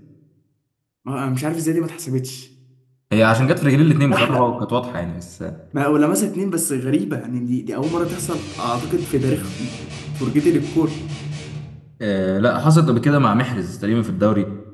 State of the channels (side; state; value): both; identical; correlation 1.00